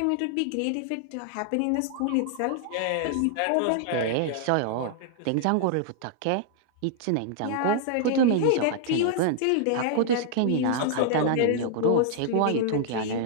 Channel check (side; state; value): both; different; correlation -0.01